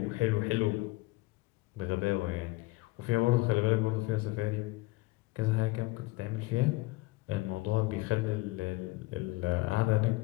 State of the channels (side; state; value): right; quieter; 21.0 dB